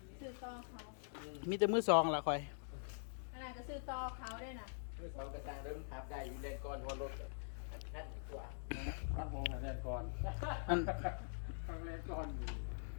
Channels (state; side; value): silent; right; digital silence